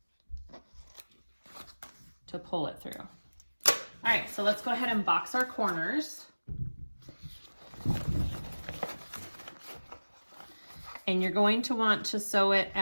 to pull it through. All right, so let's go ahead and box our corners. And you're going to want to sew it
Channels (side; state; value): both; inverted; correlation -1.00